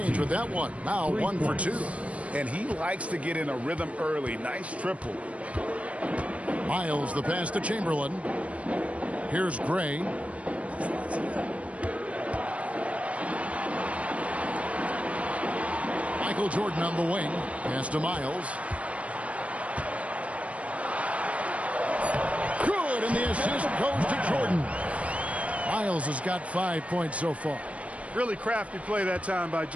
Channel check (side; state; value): left; late; 0.064 ms